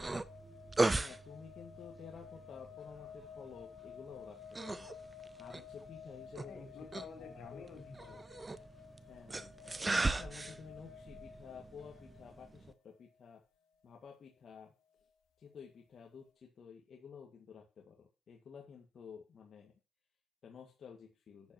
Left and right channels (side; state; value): both; normal; correlation 0.93